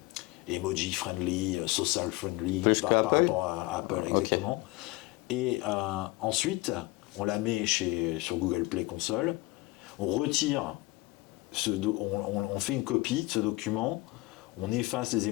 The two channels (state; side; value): quieter; right; 20.9 dB